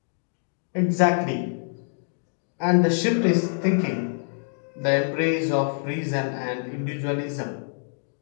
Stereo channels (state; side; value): silent; right; digital silence